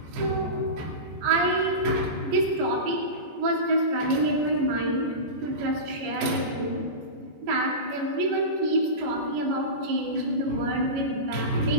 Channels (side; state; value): left; late; 14 ms